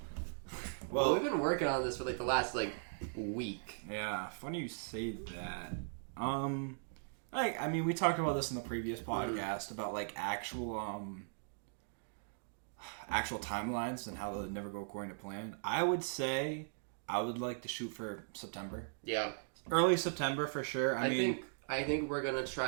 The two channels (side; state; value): left; silent; digital silence